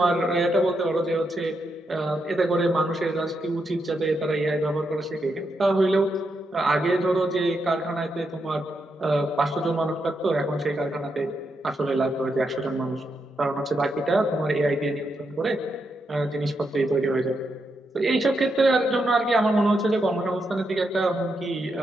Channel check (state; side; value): normal; both; correlation 0.83